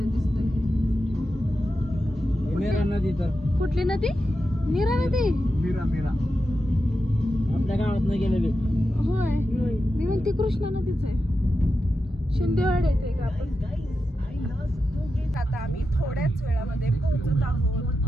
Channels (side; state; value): both; normal; correlation 0.90